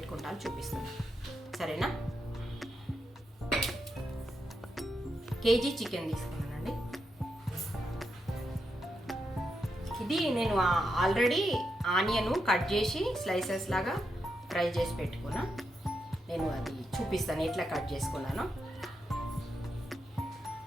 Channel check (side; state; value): both; normal; correlation 0.84